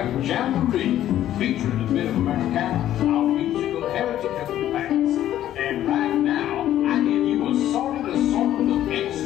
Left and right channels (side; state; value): right; quieter; 12.3 dB